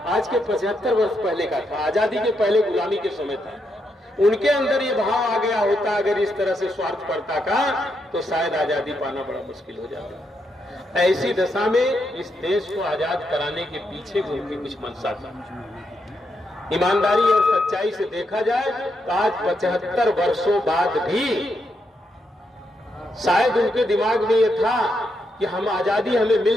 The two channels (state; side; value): normal; both; correlation 0.81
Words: आज के 75 वर्ष पहले का था, आजादी के पहले गुलामी के समय था। उनके अंदर ये भाव आ गया होता अगर इस तरह से स्वार्थपरता का, तो शायद आजादी पाना बड़ा मुश्किल हो जाता। ऐसी दशा में इस देश को आजाद कराने के पीछे भी उनकी कुछ मंशा था। ईमानदारी और सच्चाई से देखा जाए तो आज 75 वर्षों बाद भी शायद उनके दिमाग में यह था कि हम आजादी हमें